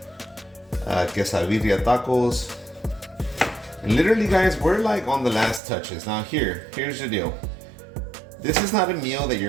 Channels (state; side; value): drops out; left; at 5.6 s